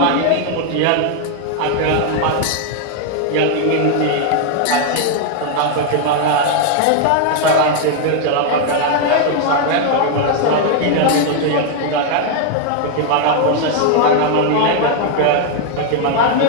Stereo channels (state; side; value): different; both; correlation 0.00